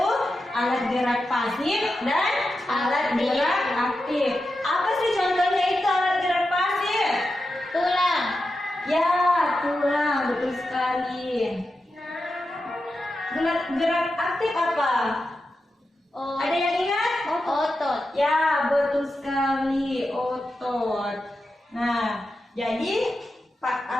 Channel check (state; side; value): normal; both; correlation 0.90